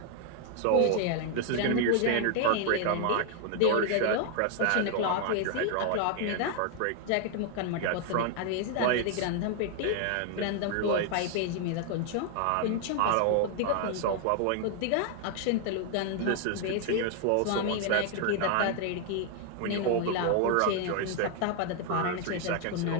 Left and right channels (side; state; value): both; different; correlation 0.00